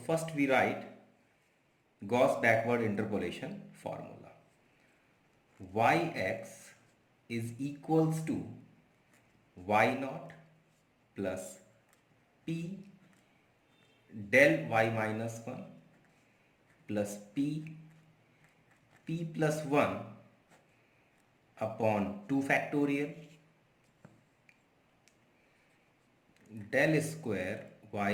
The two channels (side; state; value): both; identical; correlation 1.00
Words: first we write Gauss backward interpolation formula. Yx is equals to y naught plus p del y minus 1 plus p plus 1 upon 2 factorial del square y